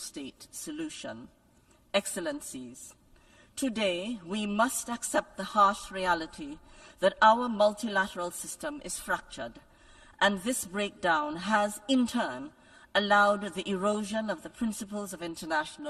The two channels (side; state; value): both; identical; correlation 1.00